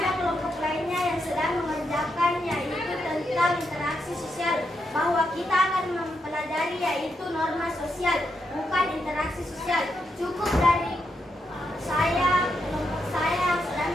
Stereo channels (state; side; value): normal; both; correlation 0.82